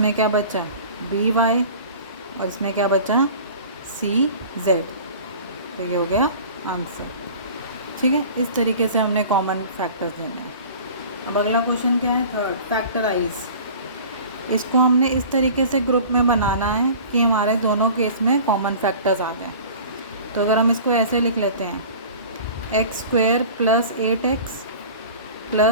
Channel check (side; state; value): both; inverted; correlation -0.42